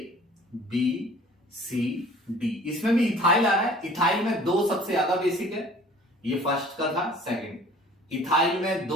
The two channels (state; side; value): normal; both; correlation 0.50